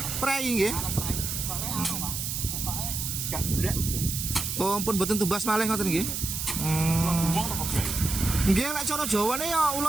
prei nggih. Oh, ampun mboten tumbas malih ngoten nggih. Nggih, lek cara Jawane ya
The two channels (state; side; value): noise; right; hiss, 3 dB below the sound